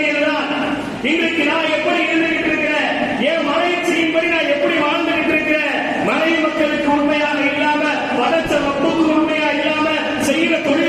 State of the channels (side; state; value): both; identical; correlation 1.00